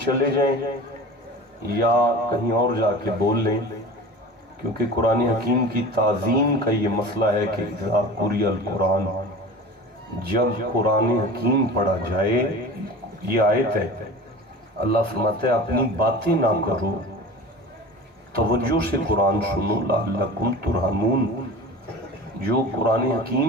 چلے جائیں یا کہیں اور جا کے بول لیں، کیونکہ قرآن حکیم کی تعظیم کا یہ مسئلہ ہے کہ اذا قرئ القرآن، جب قرآن حکیم پڑھا جائے، یہ آیت ہے، اللہ فرماتا ہے اپنی باتیں نہ کرو، توجہ سے قرآن سنو لعلکم ترحمون۔ جو قرآن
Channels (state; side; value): normal; both; correlation 0.36